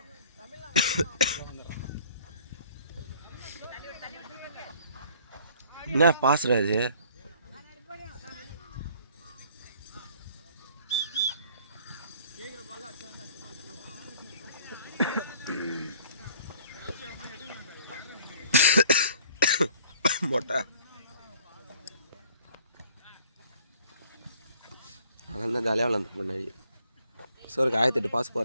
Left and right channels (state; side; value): inverted; both; correlation -0.55